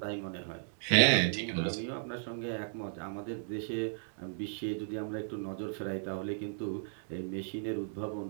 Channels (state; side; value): silent; left; digital silence